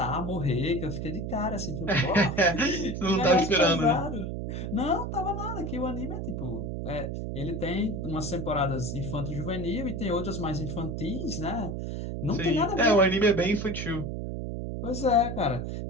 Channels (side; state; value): right; noise; hum, 4 dB below the sound